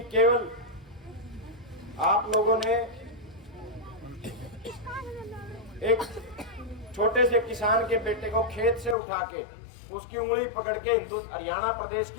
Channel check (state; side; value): drops out; right; at 9.0 s